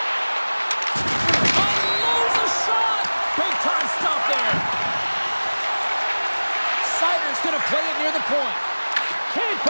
Unloads a shot! Big time stop there. Sider's going to play it near the point. Can't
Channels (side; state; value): both; inverted; correlation -1.00